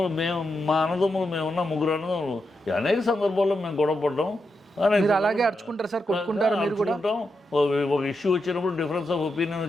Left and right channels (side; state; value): both; normal; correlation 0.86